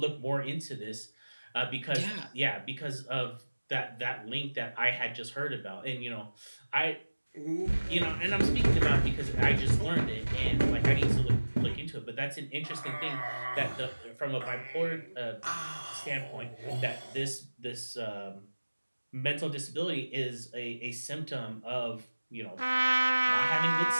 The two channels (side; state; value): both; inverted; correlation -1.00